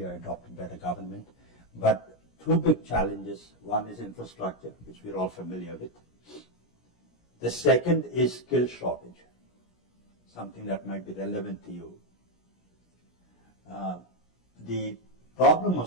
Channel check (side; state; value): right; late; 17 ms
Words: adopted by the government. But two big challenges. One is infrastructure, which we're all familiar with. The second is skill shortage, something that might be relevant to you. The Problem